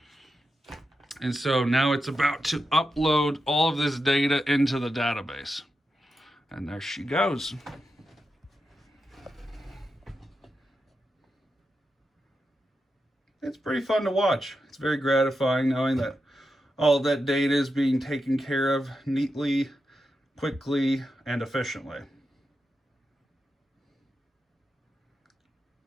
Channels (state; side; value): normal; both; correlation 0.88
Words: And so now it's about to upload all of this data into the database. And there she goes. It's pretty fun to watch. It's very gratifying knowing that all of that data is being taken care of neatly, quickly, and efficiently.